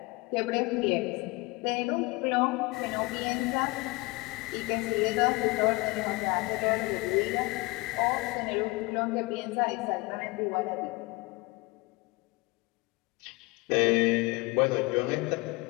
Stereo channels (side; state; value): right; quieter; 24.5 dB